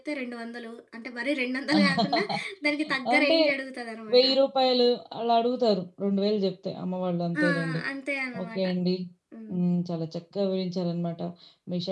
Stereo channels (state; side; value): identical; both; correlation 1.00